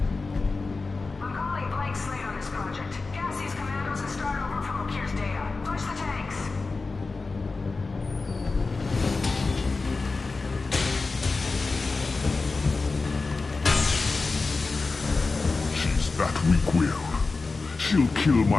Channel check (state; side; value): quieter; right; 3.9 dB